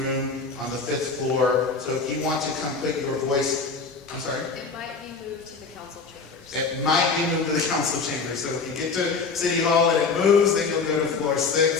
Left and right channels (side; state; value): right; quieter; 4.7 dB